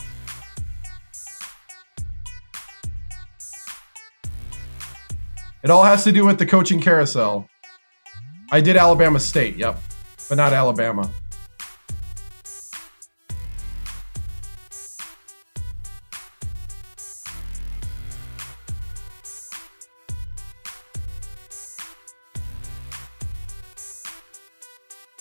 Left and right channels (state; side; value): inverted; both; correlation -1.00